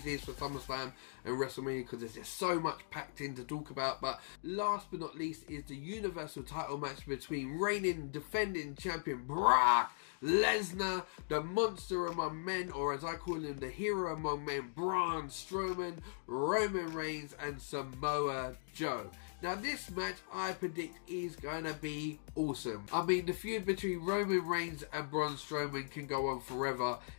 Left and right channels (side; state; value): right; silent; digital silence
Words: is for SummerSlam and WrestleMania, because there's just so much packed in to talk about. But last but not least is the Universal title match between reigning defending champion Brock Lesnar, the monster among men, or as I call him, the hero among men, Braun Strowman, Roman Reigns and Samoa Joe. Now this match I predict is going to be awesome. I mean, the feud between Roman Reigns and Braun Strowman can go on forever